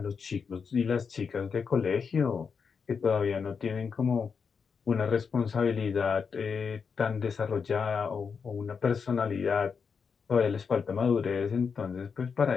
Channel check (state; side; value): quieter; right; 5.9 dB